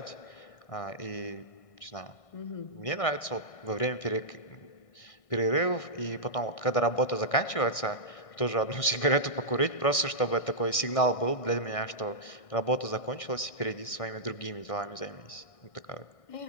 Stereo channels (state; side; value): late; right; 1.6 ms